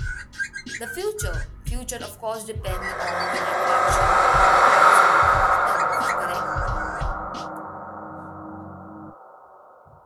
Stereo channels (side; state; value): both; identical; correlation 1.00